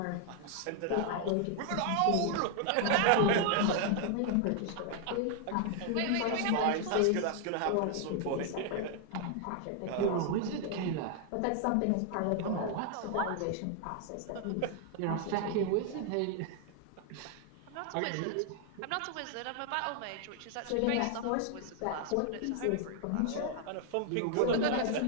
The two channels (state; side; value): different; both; correlation 0.00